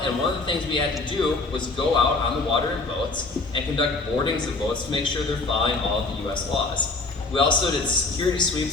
one of the things we had to do was go out on the water in boats and conduct boardings of boats to make sure they're following all of the U.S. laws. We also did security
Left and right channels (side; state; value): right; quieter; 3.5 dB